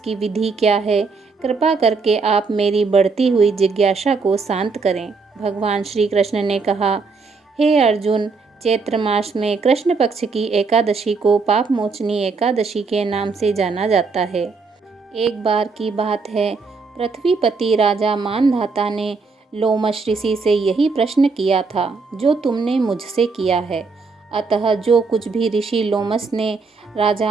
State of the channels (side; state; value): left; quieter; 4.5 dB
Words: विधि क्या है, कृपा करके आप मेरी बढ़ती हुई जिज्ञासा को शांत करें। भगवान श्री कृष्ण ने कहा, हे अर्जुन, चैत्र मास में कृष्ण पक्ष की एकादशी को पाप मोचनी एकादशी के नाम से जाना जाता है। एक बार की बात है, पृथ्वीपति राजा मानधाता ने लोमश ऋषि से यही प्रश्न किया था जो तुमने मुझसे किया है। अतः जो कुछ भी ऋषि लोमश ने